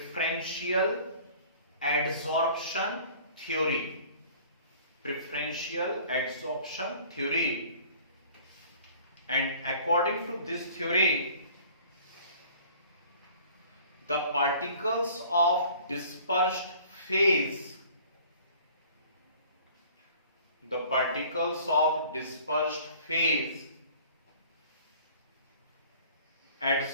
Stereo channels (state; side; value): inverted; both; correlation -0.50